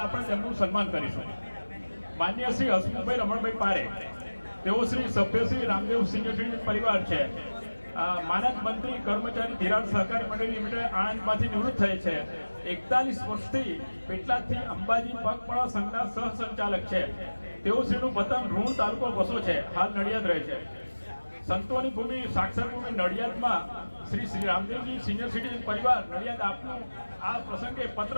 આપણે તેમનું સન્માન કરીશું. માન્ય શ્રી હસમુખભાઈ રમણભાઈ પારે, તેઓ શ્રી સભ્ય શ્રી રામદેવ સિનિયર સિટીઝન પરિવાર છે. માનદ મંત્રી કર્મચારી ધિરાણ સહકારી મંડળી લિમિટેડ આણંદમાંથી નિવૃત્ત થયે છે. 41 વર્ષથી પેટલાદથી અંબાજી પગપાળા સંઘના સહસંચાલક છે. તેઓ શ્રીનું વતન રૂણ તાલુકો વસો છે, હાલ નડિયાદ રહે છે. સંતોની ભૂમિ સાક્ષર ભૂમિ નડિયાદમાં શ્રી રામદેવજી સિનિયર સિટીઝન પરિવાર નડિયાદ આપનું આ પ્રસંગે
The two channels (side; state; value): both; inverted; correlation -1.00